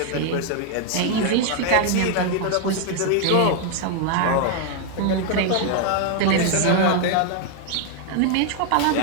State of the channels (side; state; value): both; different; correlation 0.01